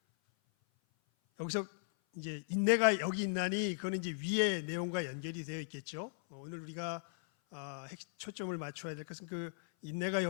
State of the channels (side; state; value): right; silent; 53 dB below the other